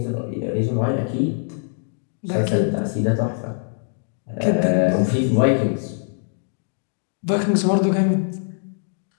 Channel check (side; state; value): right; silent; digital silence